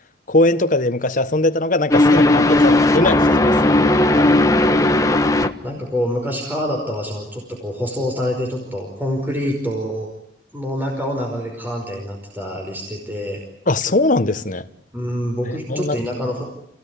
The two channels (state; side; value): normal; both; correlation 0.55